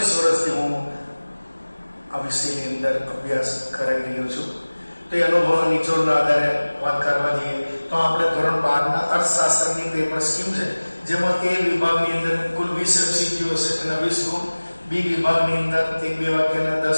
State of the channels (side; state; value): both; inverted; correlation -1.00